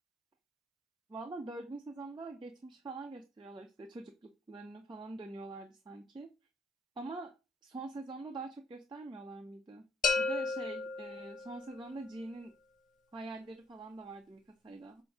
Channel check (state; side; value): normal; both; correlation 0.67